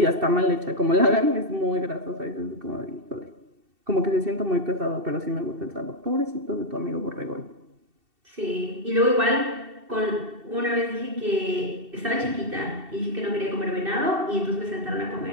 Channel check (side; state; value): left; late; 2.7 ms